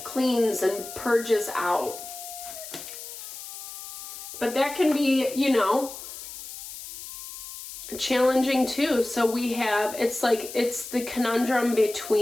cleans and purges out. But that can be, you know, challenging too. So we have, it's like, it's the conundrum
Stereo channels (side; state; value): left; noise; hiss, 11 dB below the sound